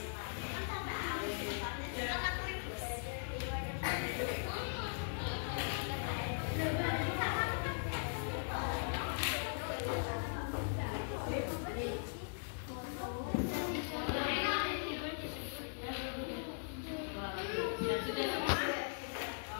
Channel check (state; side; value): silent; right; digital silence